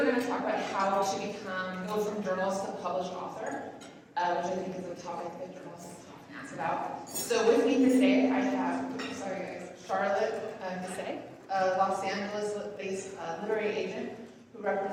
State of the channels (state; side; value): identical; both; correlation 1.00